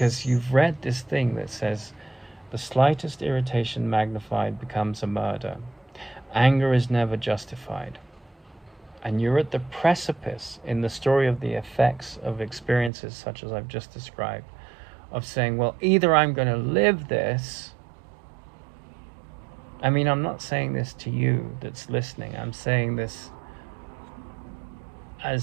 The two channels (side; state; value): left; drops out; at 12.9 s